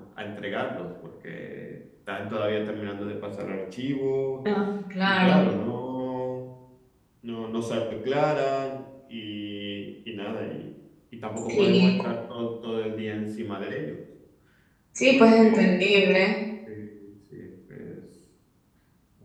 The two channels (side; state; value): both; identical; correlation 1.00